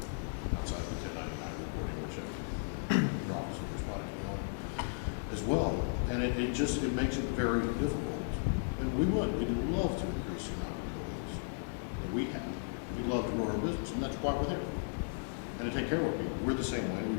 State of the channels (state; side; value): silent; right; digital silence